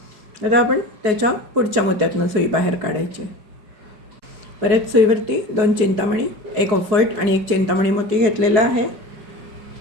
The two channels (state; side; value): late; left; 4.7 ms